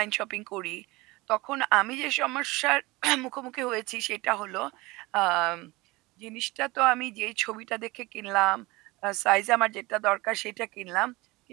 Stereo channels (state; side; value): quieter; left; 22.3 dB